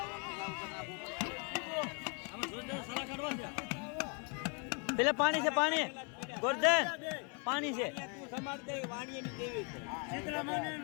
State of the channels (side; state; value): right; quieter; 36.2 dB